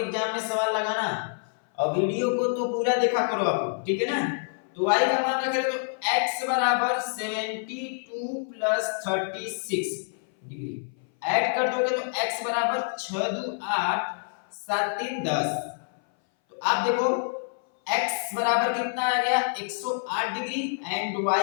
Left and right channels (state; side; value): silent; right; 58 dB below the other